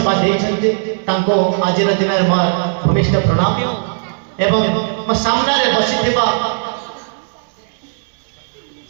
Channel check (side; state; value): left; silent; digital silence